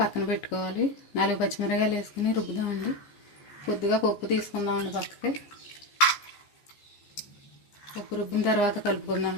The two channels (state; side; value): late; right; 14 ms